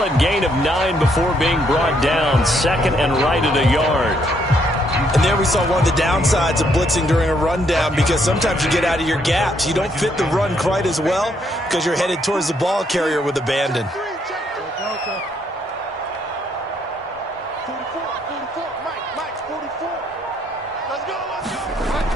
gain of 9 before being brought down. 2nd and right at a yard. And there we saw one of the downsides of blitzing during a rundown, because sometimes you get out of your gaps. You don't fit the run quite as well because you're headed towards the ball carrier with abandon.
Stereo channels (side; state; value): both; normal; correlation 0.72